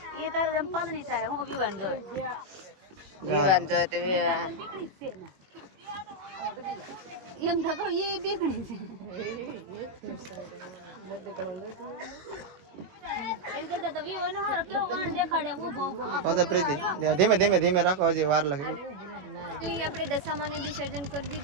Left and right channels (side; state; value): left; late; 21 ms